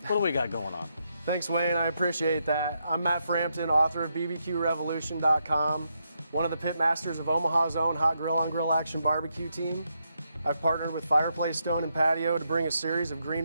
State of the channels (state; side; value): inverted; both; correlation -0.81